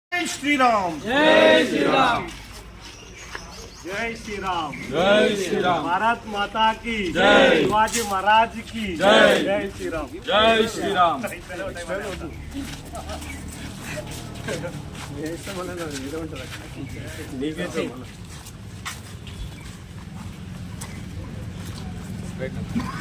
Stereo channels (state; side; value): identical; both; correlation 1.00